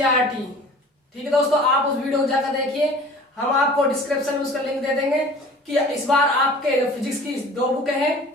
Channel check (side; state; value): both; normal; correlation 0.45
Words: ठीक है दोस्तों, आप उस वीडियो को जाकर देखिए। हम आपको डिस्क्रिप्शन में उसका लिंक दे देंगे कि इस बार आपके फिजिक्स की 2 बुक है